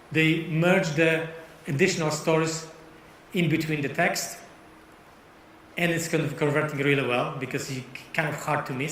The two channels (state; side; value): identical; both; correlation 1.00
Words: They merge the additional stories in between the text, and it's kind of converting really well because it's kind of hard to